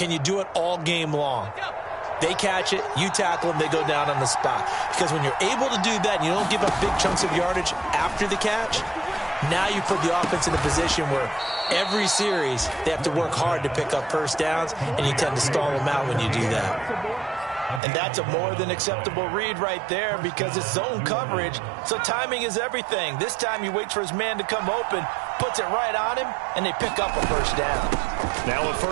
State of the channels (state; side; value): drops out; left; at 17.8 s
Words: you do it all game long? They catch it, you tackle them, they go down on the spot. Because when you're able to do that and you don't give up big chunks of yardage after the catch, now you put the offense in a position where every series they have to work hard to pick up first downs, and you tend to stall them out when you do that. And that's a more than acceptable read right there because it's zone coverage, so timing is everything. This time he waits for his man to come open, puts it right on him, and they pick up a first down. Now a